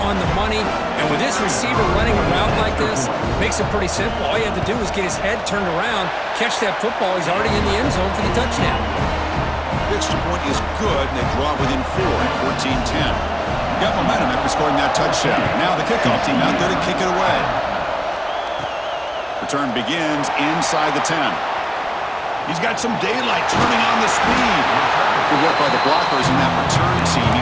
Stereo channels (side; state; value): both; identical; correlation 1.00